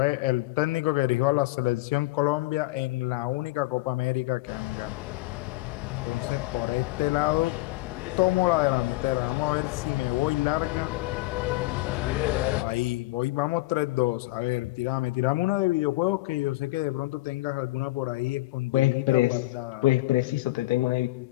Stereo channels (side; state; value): right; quieter; 19.6 dB